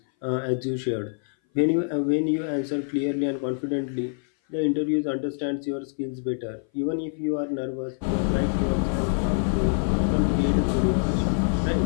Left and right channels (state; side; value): silent; right; 58 dB below the other